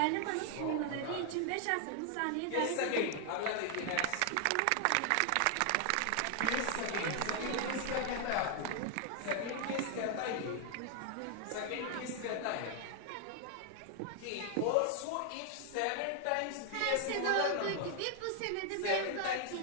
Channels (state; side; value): different; both; correlation 0.00